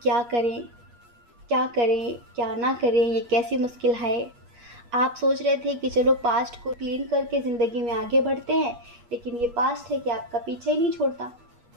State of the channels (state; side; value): late; left; 8.4 ms